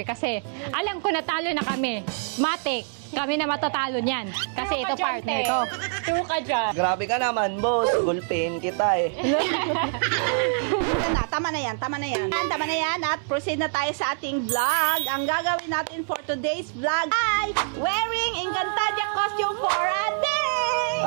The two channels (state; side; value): silent; left; 62 dB below the other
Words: Kasi, alam ko natalo na kami. Matik. Kami na matatalo niyan. Kasi True ka ito dyan, partner te. ko. True ka dyan. Grabe ka naman, boss. Gulpin kita eh. Tama na yan. Tama na yan at proceed na tayo sa ating vlog. Ang gagawin natin for today's vlog ay wearing Encantadia costume for a day!